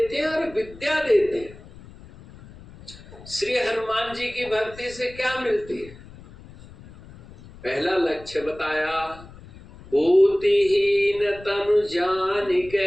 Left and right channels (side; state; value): left; noise; rumble, 20 dB below the sound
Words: हैं और विद्या देते हैं। श्री हनुमान जी की भक्ति से क्या मिलती है? पहला लक्ष्य बताया, बुद्धिहीन तनु